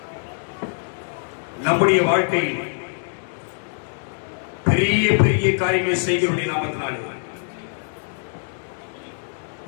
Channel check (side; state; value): right; silent; 63 dB below the other